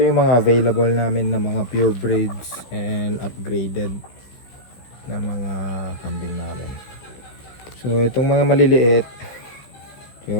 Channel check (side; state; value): right; late; 16 ms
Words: yung mga available namin na mga pure breeds and upgraded na mga kambing namin. So itong mga maliliit,